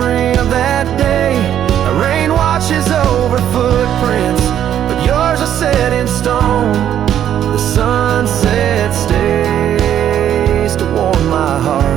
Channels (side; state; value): left; quieter; 10.4 dB